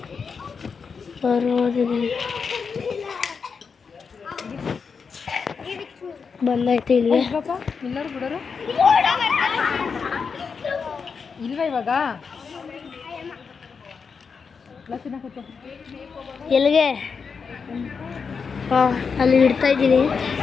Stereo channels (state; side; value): quieter; right; 5.6 dB